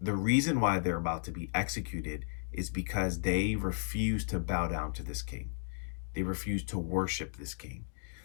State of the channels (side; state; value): right; silent; digital silence